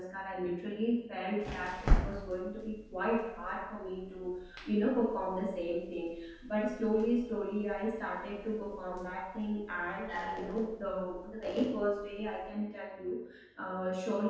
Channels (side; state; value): both; identical; correlation 1.00